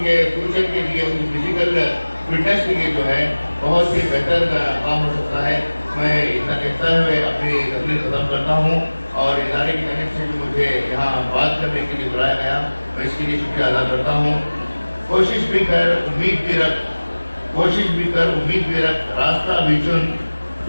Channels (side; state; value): both; inverted; correlation -1.00